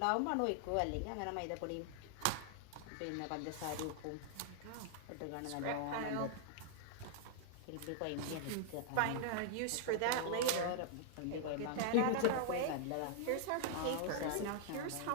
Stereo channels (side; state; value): both; different; correlation -0.01